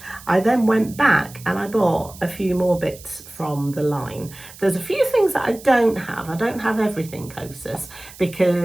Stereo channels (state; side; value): noise; right; hiss, 19 dB below the sound